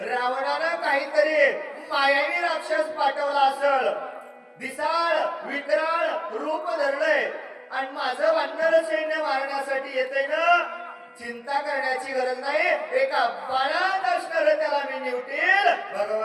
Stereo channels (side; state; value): both; identical; correlation 1.00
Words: रावणानं काहीतरी मायावी राक्षस पाठवला असल विशाळ विकराळ रूप धरलंय आणि माझं वानर सैन्य मारण्यासाठी येते ना चिंता करण्याची गरज नाही एका बाणात असणार त्याला मी निवटील